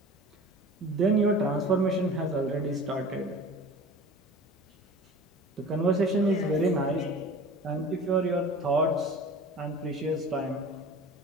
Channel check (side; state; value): both; normal; correlation 0.40